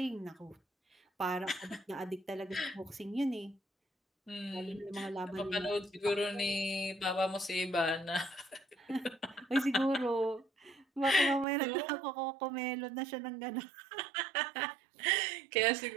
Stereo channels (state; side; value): drops out; left; at 11.5 s